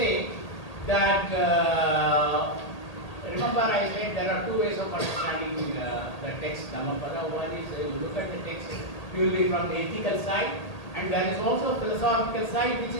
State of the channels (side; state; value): right; late; 1.8 ms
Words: that remember I said there are two ways of understanding the text Dhammapada. One is you look at the text purely from the ethical side, and there is also a philosophical side which